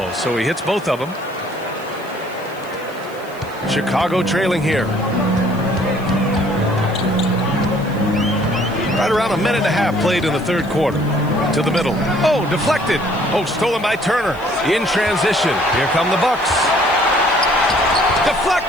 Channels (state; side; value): noise; left; hiss, 24 dB below the sound